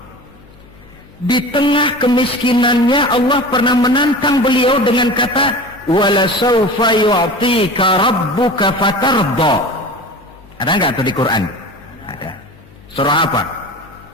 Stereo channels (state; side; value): noise; left; hum, 25 dB below the sound